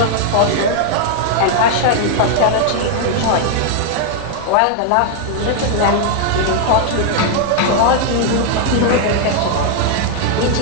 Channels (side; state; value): both; different; correlation 0.00